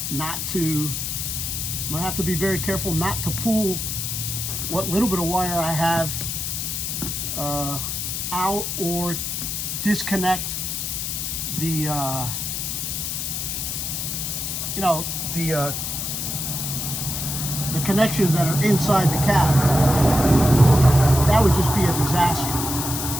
not to pull what little bit of wire I have out, or disconnect the the connections that are inside the cab. That would just be a disaster.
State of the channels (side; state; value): left; noise; hiss, 3 dB below the sound